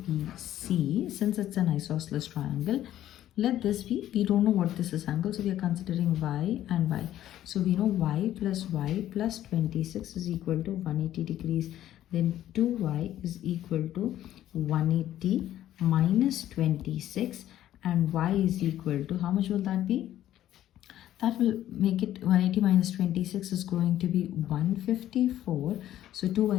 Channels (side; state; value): right; quieter; 12.6 dB